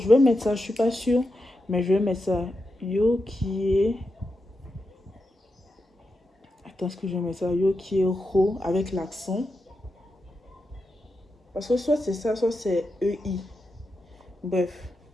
vais mettre ça, je suis pas sûre, mais je vais mettre ça. Yo qui est. Attends, est-ce que je vais mettre ça? Yo qui est ro avec l'accent. Parce que soit c'est ça, soit c'est EI. Bref.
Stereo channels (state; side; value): normal; both; correlation 0.88